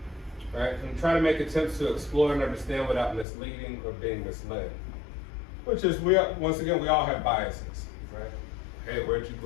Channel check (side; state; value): right; drops out; at 3.2 s